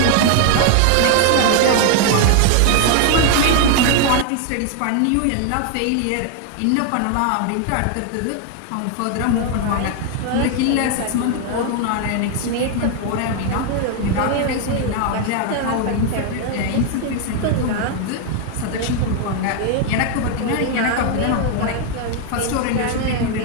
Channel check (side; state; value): both; different; correlation 0.00